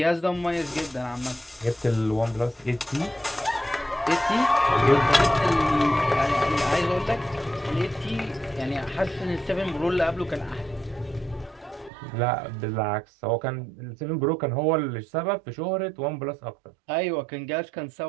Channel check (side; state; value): left; drops out; at 11.9 s